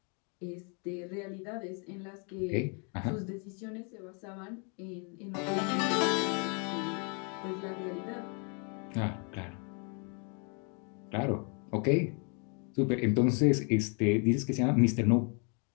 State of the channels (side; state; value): right; quieter; 37.1 dB